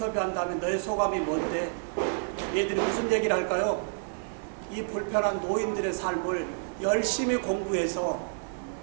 다음에 너의 소감이 뭔데? 얘들이 무슨 얘기를 할까요? 이 불편한 노인들의 삶을 열심히 공부해서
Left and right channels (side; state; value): left; silent; digital silence